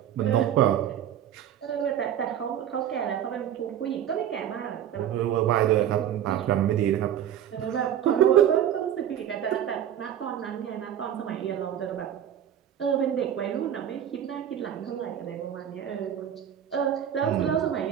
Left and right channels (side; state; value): left; quieter; 10.2 dB